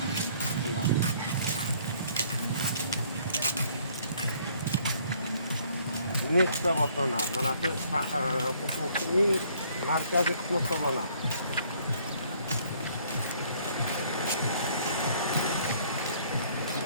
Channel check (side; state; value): both; inverted; correlation -0.61